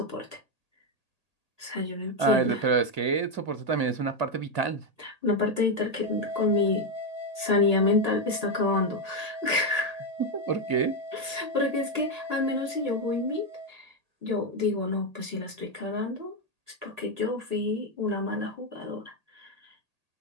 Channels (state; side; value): late; left; 1.8 ms